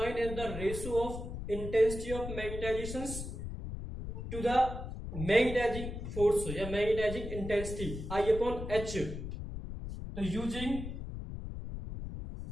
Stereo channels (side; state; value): left; noise; rumble, 7 dB below the sound